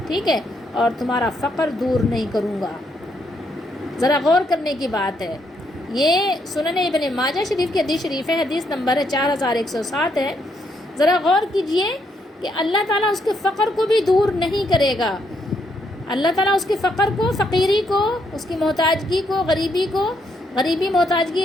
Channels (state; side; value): normal; both; correlation 0.75